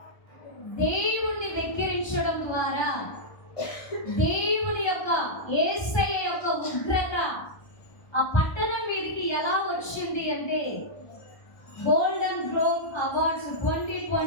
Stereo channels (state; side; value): late; right; 1.3 ms